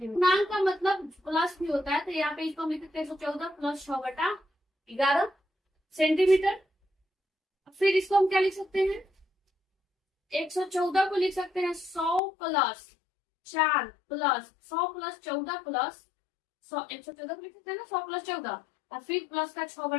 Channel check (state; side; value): drops out; right; at 12.2 s